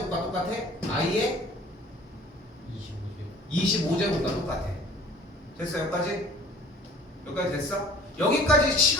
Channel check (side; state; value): both; normal; correlation 0.47